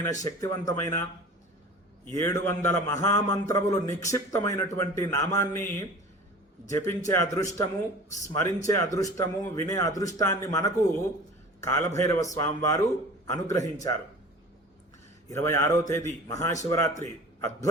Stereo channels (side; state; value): both; normal; correlation 0.40